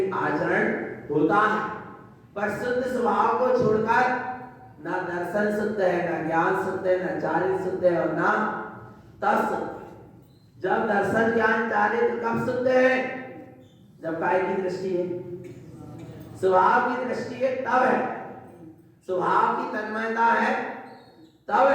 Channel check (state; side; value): identical; both; correlation 1.00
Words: आचरण होता है। पर शुद्ध स्वभाव को छोड़कर ना दर्शन शुद्ध है, ना ज्ञान शुद्ध है, ना चारित्र शुद्ध है और ना तप शुद्ध है। जब दर्शन ज्ञान चारित्र कब शुद्ध है? जब काय की दृष्टि है, स्वभाव की दृष्टि है तब है, स्वभाव की तन्मयता है तब